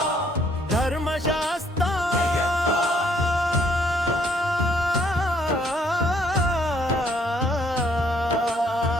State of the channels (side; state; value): both; normal; correlation 0.65